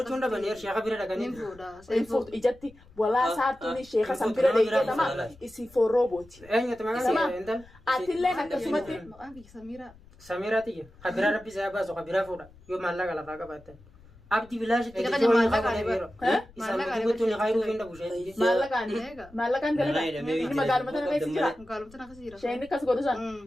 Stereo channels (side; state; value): left; noise; rumble, 24 dB below the sound